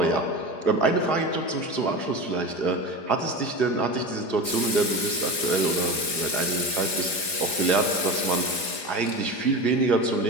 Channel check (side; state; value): right; late; 4.4 ms